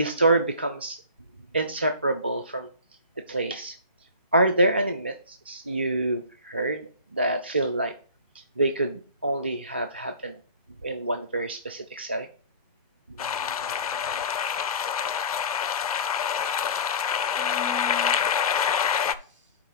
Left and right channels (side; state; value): both; inverted; correlation -0.36